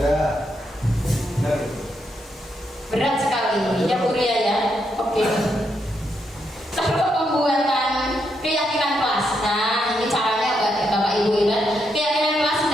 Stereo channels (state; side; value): normal; both; correlation 0.80